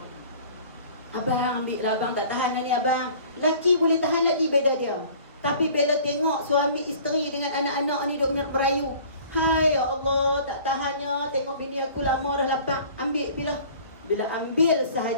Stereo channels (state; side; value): inverted; both; correlation -0.48